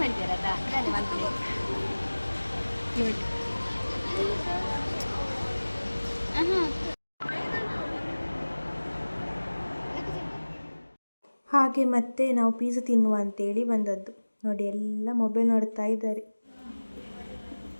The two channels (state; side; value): inverted; both; correlation -1.00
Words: ಹಾಗೆ ಮತ್ತೆ ನಾವು ಪೀಸ್ ತಿನ್ನುವ ಅಂತೇಳಿ ಬಂದದ್ದು. ನೋಡಿ ಎಲ್ಲ ಮೊಬೈಲ್ ನೋಡ್ತಾ ಇದ್ದಾರೆ.